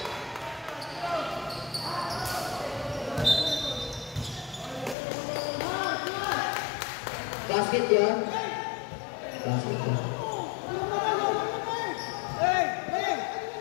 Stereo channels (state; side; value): drops out; right; at 5.0 s